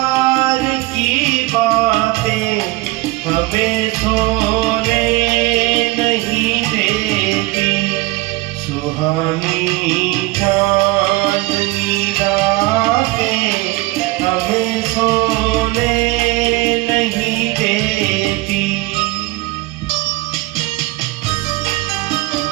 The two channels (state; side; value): quieter; left; 21.1 dB